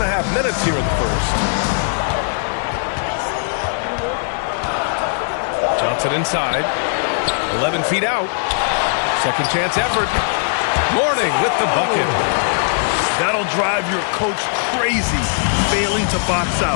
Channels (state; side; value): silent; right; digital silence